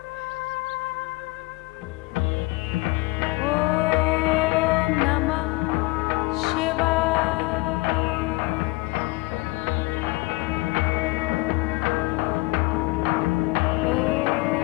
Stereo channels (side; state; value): right; quieter; 21.4 dB